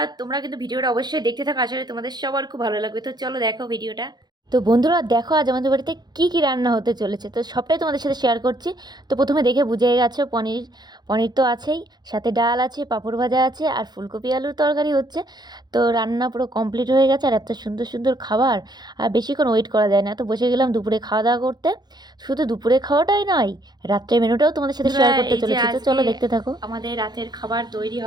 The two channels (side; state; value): left; late; 0.20 ms